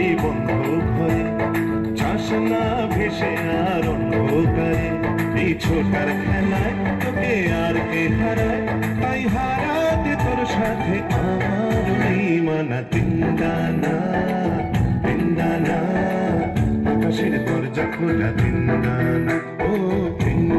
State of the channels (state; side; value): identical; both; correlation 1.00